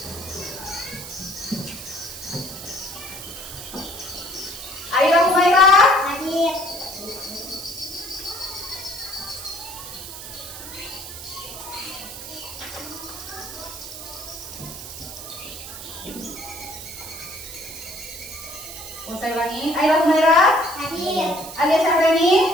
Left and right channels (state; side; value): noise; right; hiss, 11 dB below the sound